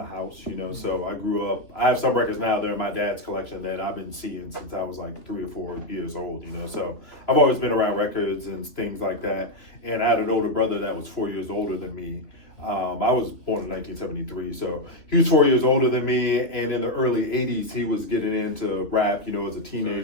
house, you know, so I grew up, I have some records now, they're in my dad's collection that I've been seeing since I was like 3 or 4 years old, you know, so I've always been around records and things like that. And I had an older brother that was 4 years older than me. I was born in 1973, so he was 4 years older than me, and in the early 80s, he was getting into rap, you know, as a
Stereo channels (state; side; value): late; right; 3.0 ms